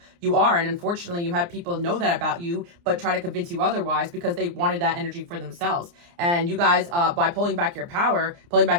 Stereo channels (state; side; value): late; left; 29 ms